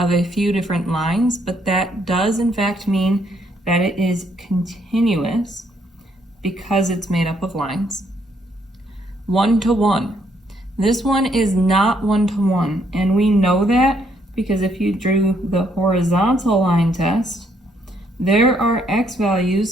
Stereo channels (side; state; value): both; normal; correlation 0.71